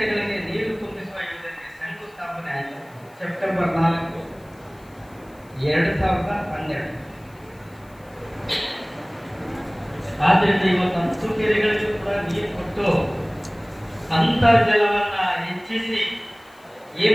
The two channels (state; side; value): noise; left; hiss, 30 dB below the sound